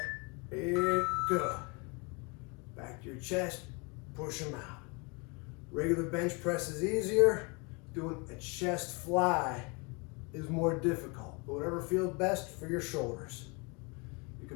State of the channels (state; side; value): quieter; right; 30.6 dB